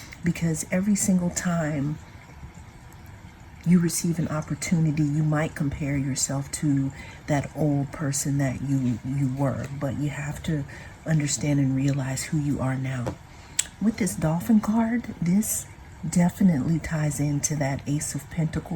Because every single time you receive an opportunity, you might compare yourself to that old person that you were, but you have to understand and realize who you are now. With this dolphin card, this definitely ties into that Ace of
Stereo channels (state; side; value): identical; both; correlation 1.00